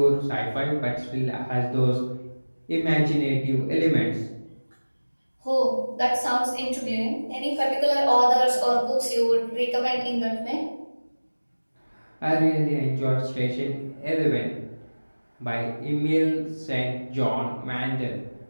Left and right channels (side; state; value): both; inverted; correlation -1.00